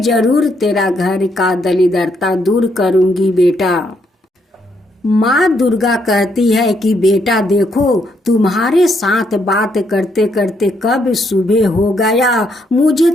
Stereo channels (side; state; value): both; normal; correlation 0.75